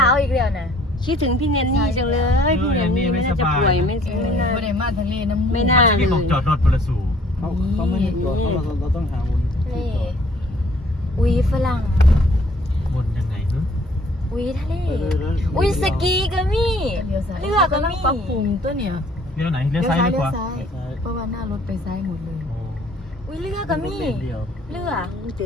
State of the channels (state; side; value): normal; both; correlation 0.58